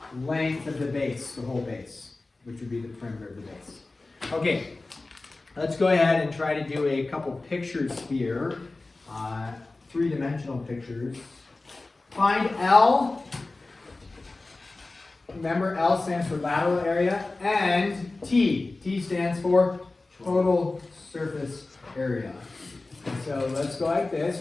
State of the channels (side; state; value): right; quieter; 3.3 dB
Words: length of the base, the whole base, which would be the perimeter of the base. Okay. Let's go ahead and try to do a couple pictures here, 3-dimensional pictures. Find L. Remember, L stands for lateral area, and T. T stands for total surface area. So let's go like this.